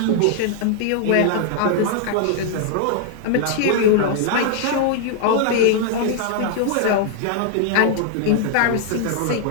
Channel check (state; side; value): different; both; correlation 0.00